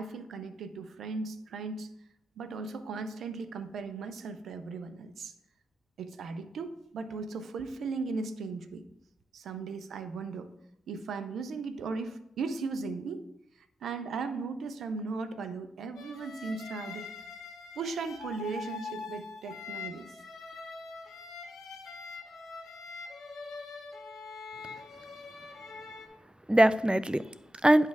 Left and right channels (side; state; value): both; normal; correlation 0.87